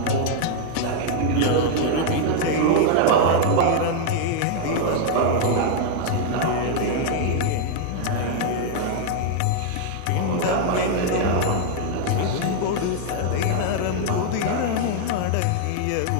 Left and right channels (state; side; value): different; both; correlation 0.00